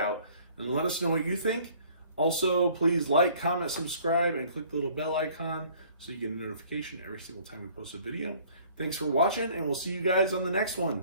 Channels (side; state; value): both; inverted; correlation -0.55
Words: and let us know what you think. Also, please like, comment, subscribe, and click the little bell icon so you get a notification every single time we post a video. Thanks for watching, and we'll see you guys on the next one.